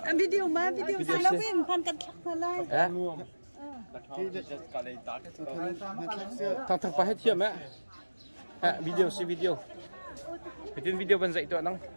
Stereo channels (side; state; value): both; inverted; correlation -1.00